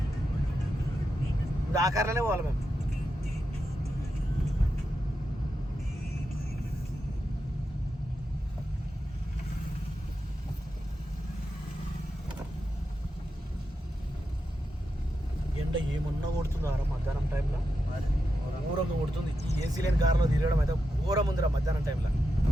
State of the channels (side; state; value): both; normal; correlation 0.87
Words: ఇప్పుడు ఆ కార్లోనే పోవాలి మేము. ఎండ ఏమన్నా కొడుతుందా మధ్యాహ్నం టైంలో? ఘోరంగా కొడుతుంది. ఈ ఏసీ లేని కారులో తిరగడం అయితే ఘోరం ఉందిరా మధ్యాహ్నం టైంలో.